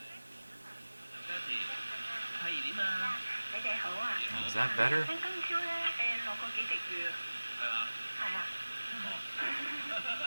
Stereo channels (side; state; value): both; inverted; correlation -1.00